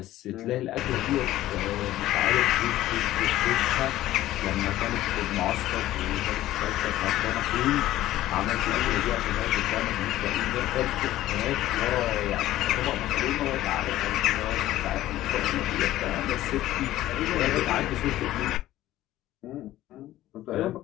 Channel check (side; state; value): right; quieter; 14.7 dB